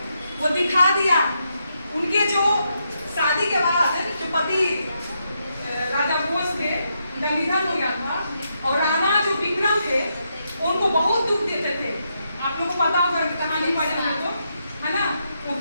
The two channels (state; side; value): inverted; both; correlation -0.81